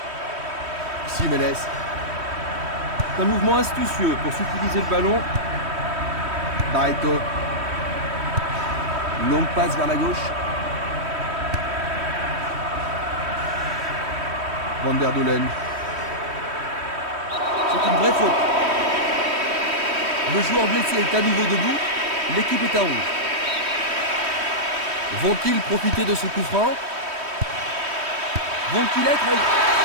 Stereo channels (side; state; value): left; late; 3.1 ms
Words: Jiménez. C'est un mouvement astucieux pour subtiliser le ballon. Barreto. Longue passe vers la gauche. Van der Doelen. C'est une vraie faute. Le joueur blessé est à nouveau debout. L'équipe est à 11. Vont-ils profiter de ce coup franc? Vont-ils être...